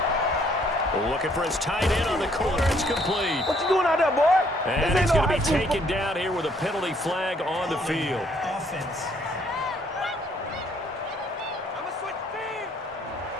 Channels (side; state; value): both; normal; correlation 0.65